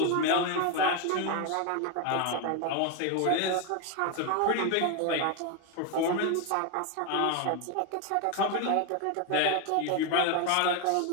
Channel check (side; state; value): both; different; correlation 0.01